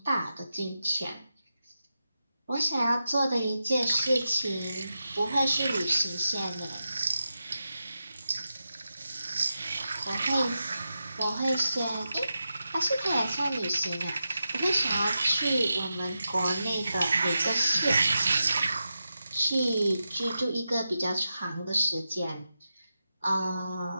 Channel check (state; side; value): inverted; both; correlation -0.89